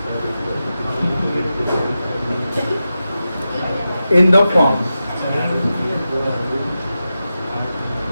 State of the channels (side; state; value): both; inverted; correlation -0.91